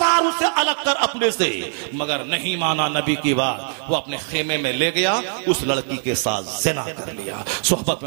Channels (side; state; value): left; silent; digital silence